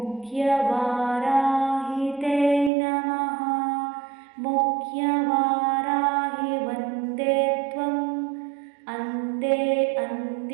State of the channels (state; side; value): drops out; left; at 2.7 s